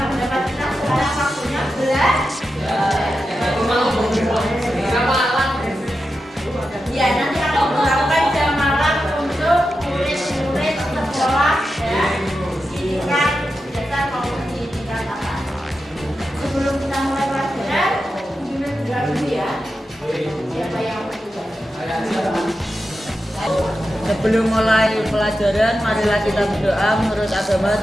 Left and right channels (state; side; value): normal; both; correlation 0.90